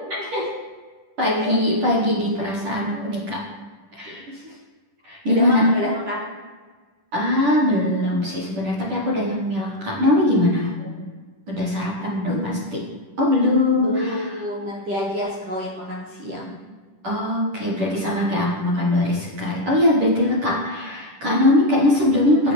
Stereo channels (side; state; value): left; late; 10 ms